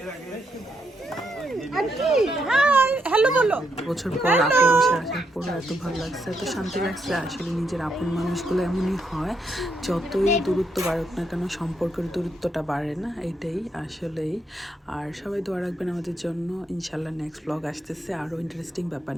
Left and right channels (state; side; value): normal; both; correlation 0.78